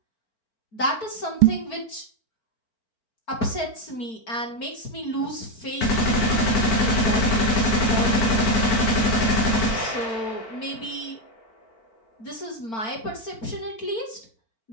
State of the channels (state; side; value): late; right; 4.5 ms